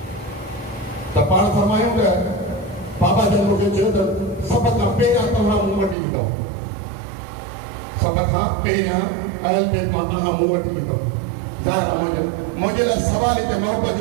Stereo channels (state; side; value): drops out; left; at 6.0 s